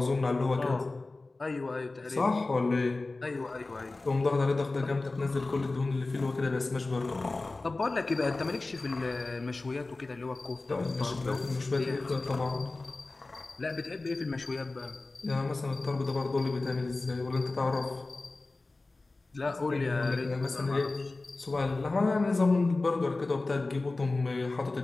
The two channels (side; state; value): right; quieter; 3.3 dB